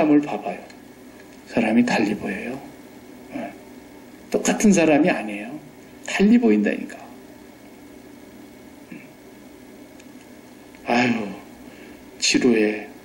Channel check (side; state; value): both; identical; correlation 1.00